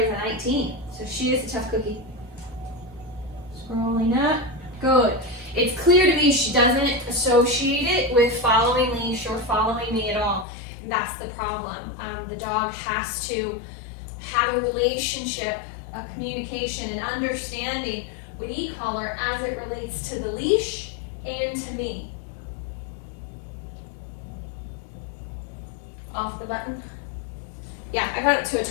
a 19. So she is a tough cookie. Scrolling up, good. It's clear to me she doesn't associate it with following leash or following me at all. And that's the problem. The dog has to have a relationship, a communication, and understanding with e-collar as it relates to the leash and to me. Off the button. Yeah, I got it to a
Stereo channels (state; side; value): drops out; right; at 10.5 s